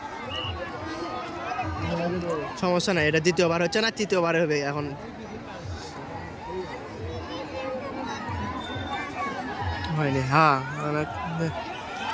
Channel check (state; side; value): identical; both; correlation 1.00